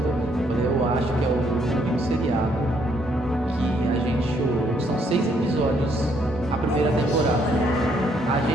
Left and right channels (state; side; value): normal; both; correlation 0.70